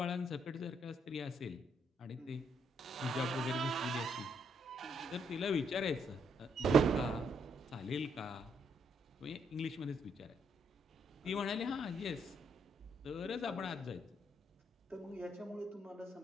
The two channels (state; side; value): normal; both; correlation 0.73